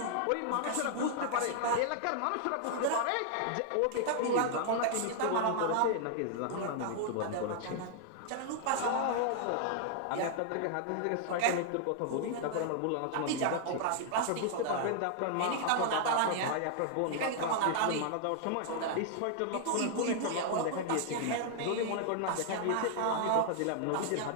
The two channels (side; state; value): both; different; correlation -0.01